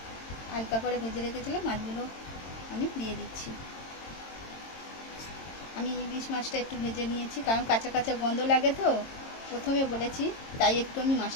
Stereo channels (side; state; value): right; late; 22 ms